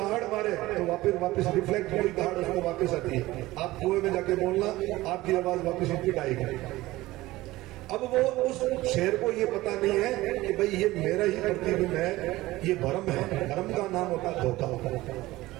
मारे तो वापस रिफ्लेक्ट हुई दहाड़ उसको वापस आती है। आप कुएं में जाके बोलना, आपकी आवाज वापस रिपीट आएगी। अब वो उस शेर को ये पता नहीं है कि भाई ये मेरा ही प्रतिबिंब है, ये भ्रम है। भ्रम का नाम होता है धोखा।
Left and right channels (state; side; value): quieter; left; 18.2 dB